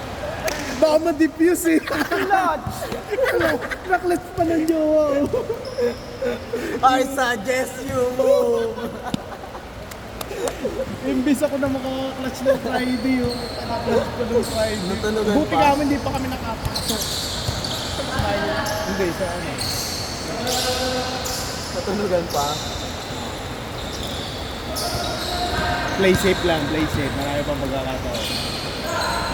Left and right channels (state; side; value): identical; both; correlation 1.00